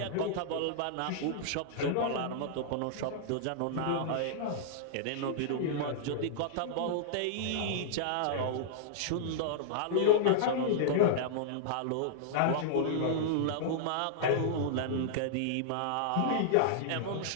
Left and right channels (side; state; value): both; different; correlation -0.02